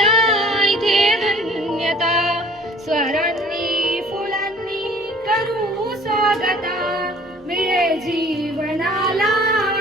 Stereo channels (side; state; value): both; normal; correlation 0.51